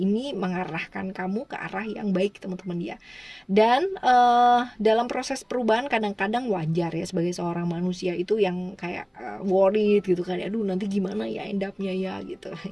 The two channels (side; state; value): both; identical; correlation 1.00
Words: mengarahkan kamu ke arah yang baik teman-teman ya. Dan dalam proses perubahan kadang-kadang wajar ya sebagai seorang manusia itu yang kayak worried gitu kan. Aduh nanti gimana ya end up-nya ya gitu